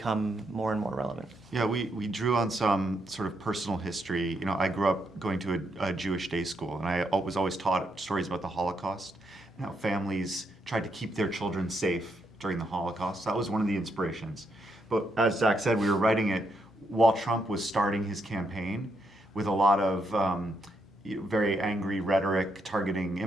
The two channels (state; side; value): normal; both; correlation 0.78